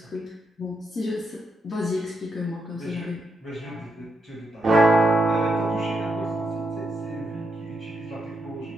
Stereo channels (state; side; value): normal; both; correlation 0.82